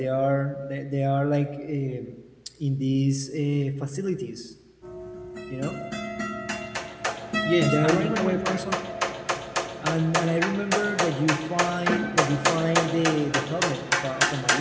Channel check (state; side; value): identical; both; correlation 1.00